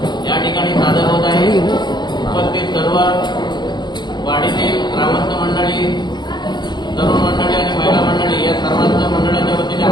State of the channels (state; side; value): late; right; 0.21 ms